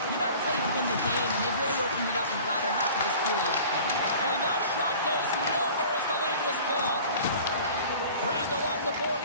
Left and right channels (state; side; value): inverted; both; correlation -0.44